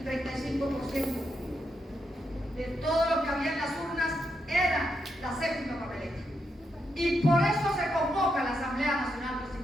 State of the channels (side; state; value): both; normal; correlation 0.82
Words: 35% de todo lo que había en las urnas era la séptima papeleta. Y por eso se convoca la Asamblea Nacional